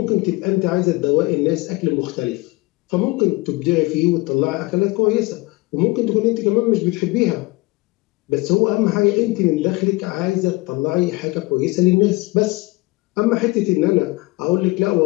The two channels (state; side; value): quieter; right; 22.9 dB